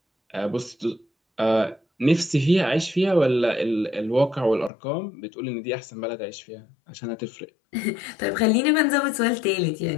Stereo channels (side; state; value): right; drops out; at 4.7 s